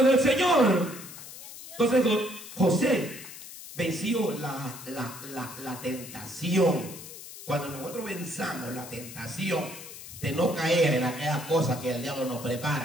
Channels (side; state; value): left; noise; hiss, 14 dB below the sound